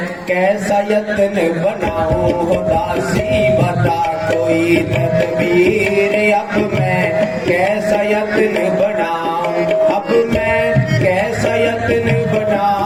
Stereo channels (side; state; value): both; identical; correlation 1.00